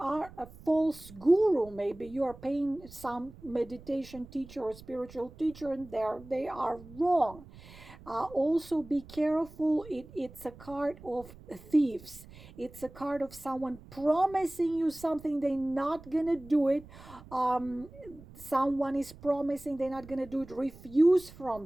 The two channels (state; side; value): noise; right; rumble, 19 dB below the sound